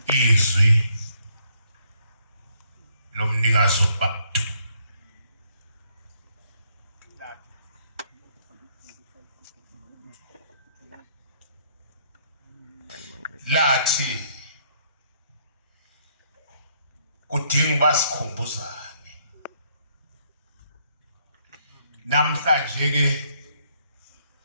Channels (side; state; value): both; inverted; correlation -0.70